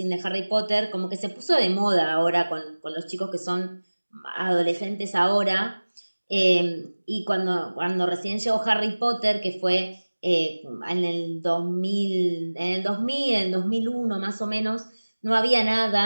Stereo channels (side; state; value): both; inverted; correlation -1.00